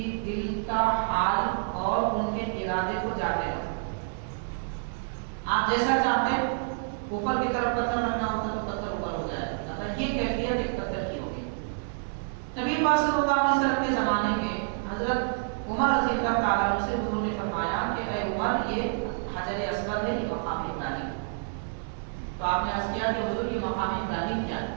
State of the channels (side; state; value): left; silent; 59 dB below the other